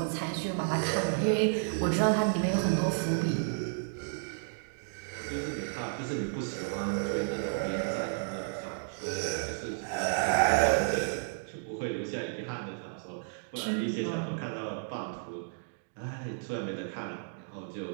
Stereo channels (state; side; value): silent; left; digital silence